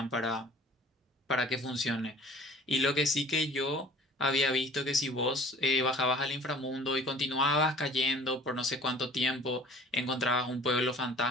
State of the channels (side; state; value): both; normal; correlation 0.48